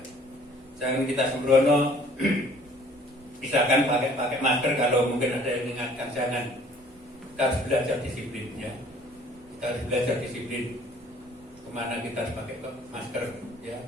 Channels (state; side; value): normal; both; correlation 0.55